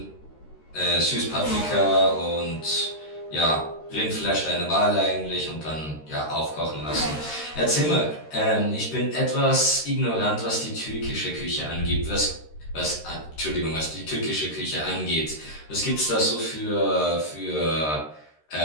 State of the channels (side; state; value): right; late; 13 ms